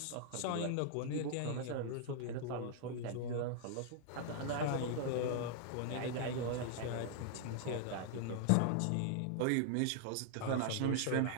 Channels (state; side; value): different; both; correlation 0.00